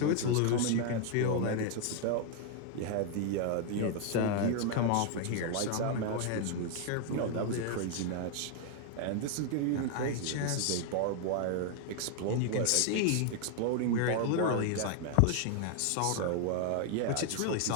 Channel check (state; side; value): different; both; correlation 0.00